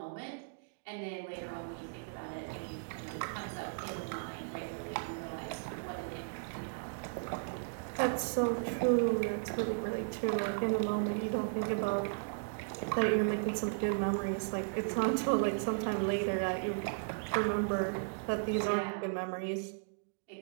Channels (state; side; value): silent; left; digital silence